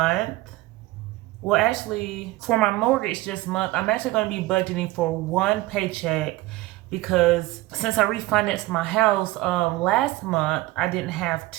well actually for my mortgage this month, I'm actually going to be budgeting for one paycheck because since I refinanced my house last month, I didn't have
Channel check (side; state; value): left; quieter; 18.9 dB